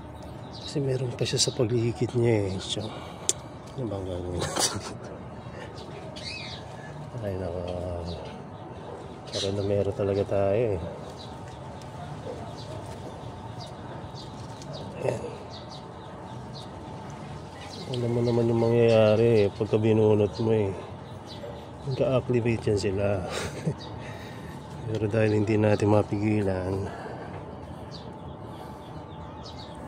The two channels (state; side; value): identical; both; correlation 1.00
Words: kasi meron pa siya sa paligid niya eh. So ano bang gagawin natin? Ay nako, parang na meron talaga tayo eh. Ayan. Alam mo naman yung mangyayari eh, pagka binunot mo eh, nagka-activate yan sila. Pero dahil hindi natin mapigilan,